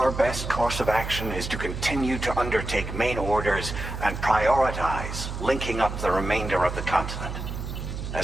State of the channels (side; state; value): right; noise; hum, 6 dB below the sound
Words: best course of action is to continue to undertake main orders and prioritize linking up the remainder of the continent.